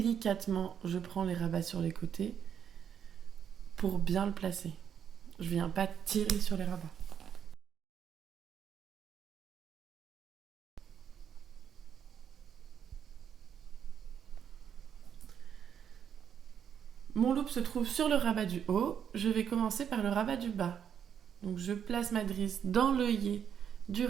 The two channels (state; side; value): quieter; left; 8.4 dB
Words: je prends les rabats sur les côtés pour bien le placer. Je viens pas tirer sur les rabats. Mon loop se trouve sur le rabat du haut, je vais commencer par le rabat du bas. Donc je place ma drisse dans l'œillet du